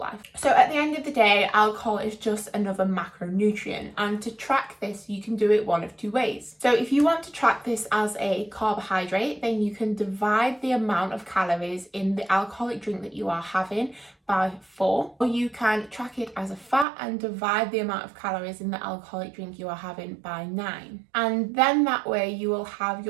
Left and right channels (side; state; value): left; drops out; at 16.9 s